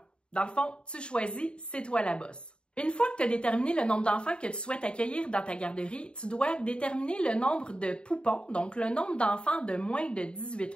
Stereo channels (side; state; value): right; late; 0.053 ms